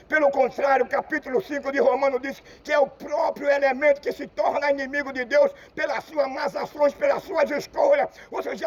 Pelo contrário, o capítulo 5 de Romanos diz que é o próprio elemento que se torna inimigo de Deus pelas suas más ações, pelas suas escolhas. Você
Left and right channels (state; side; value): identical; both; correlation 1.00